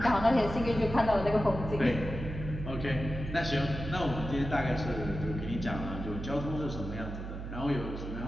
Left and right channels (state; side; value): noise; right; hum, 7 dB below the sound